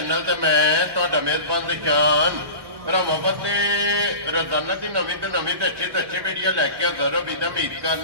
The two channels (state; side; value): late; left; 1.1 ms